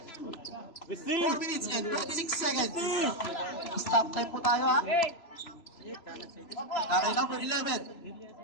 4 minutes and 26 seconds. Stop time po tayo ha. Nakay number 11.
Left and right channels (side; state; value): right; late; 3.0 ms